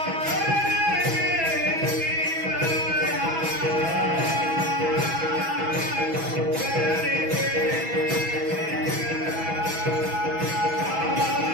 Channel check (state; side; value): late; left; 6.1 ms